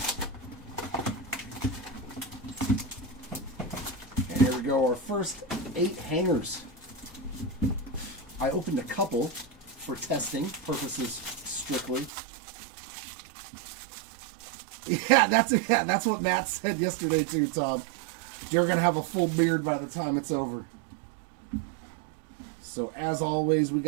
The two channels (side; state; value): left; drops out; at 12.1 s